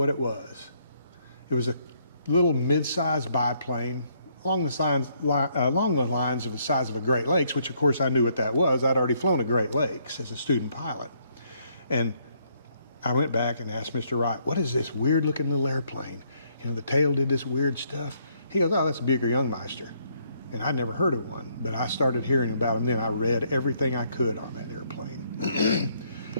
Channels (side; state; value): both; inverted; correlation -0.70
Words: it was. It was a little mid-sized biplane along the lines of the size of a Great Lakes, which of course I knew what that was. I'd already flown a Great Lakes as a student pilot. And I went back and asked Mr. Wright, "What is this weird looking little airplane? The tail did this weird stuff." He goes, "Oh, that's a Buicker Youngmeister." And I'd never heard of one, but I started hearing about them then. I read everything I could on that airplane.